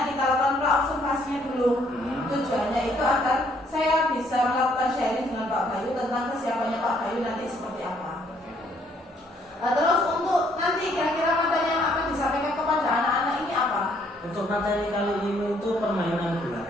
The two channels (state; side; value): normal; both; correlation 0.66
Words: kita lakukan pra-observasinya dulu. Tujuannya itu agar saya bisa melakukan sharing dengan Pak Bayu tentang kesiapannya Pak Bayu nanti seperti apa. Terus untuk nanti kira-kira materi yang akan disampaikan kepada anak-anak ini apa? Untuk materi kali ini itu permainan bola